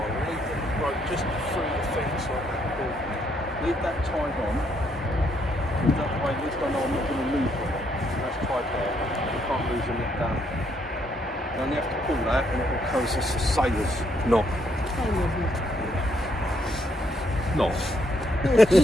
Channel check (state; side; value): normal; both; correlation 0.72